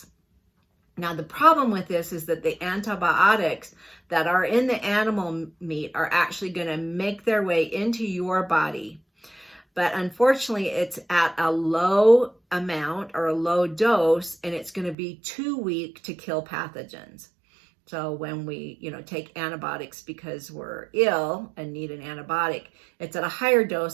Now, the problem with this is that the antibiotics that are in the animal meat are actually going to make their way into your body. But unfortunately, it's at a low amount or a low dose, and it's going to be too weak to kill pathogens. So when we, take antibiotics because we're ill and need an antibiotic, it's at a higher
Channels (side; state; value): left; drops out; at 15.0 s